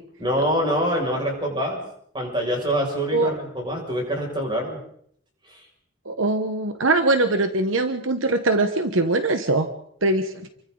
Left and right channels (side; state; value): both; normal; correlation 0.03